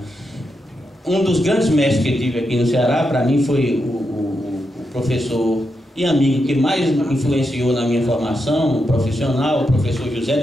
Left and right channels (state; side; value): normal; both; correlation 0.85